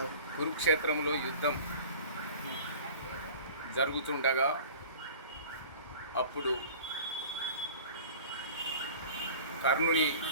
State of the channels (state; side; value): inverted; both; correlation -0.42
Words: కురుక్షేత్రంలో యుద్ధం జరుగుతుండగా అప్పుడు కర్ణుని